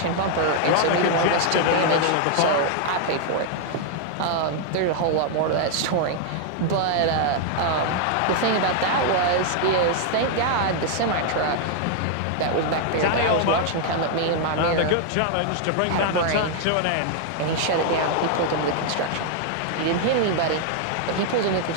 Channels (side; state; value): both; different; correlation 0.00